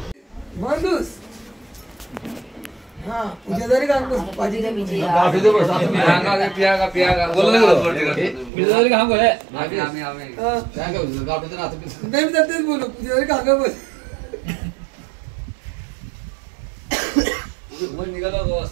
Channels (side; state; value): left; drops out; at 8.5 s